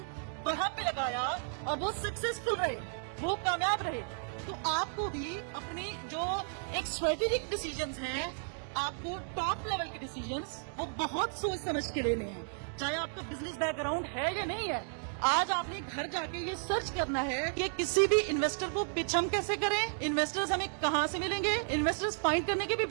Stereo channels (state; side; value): silent; left; 55 dB below the other